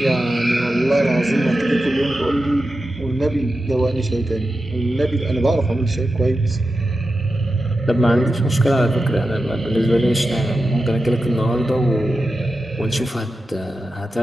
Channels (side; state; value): both; normal; correlation 0.91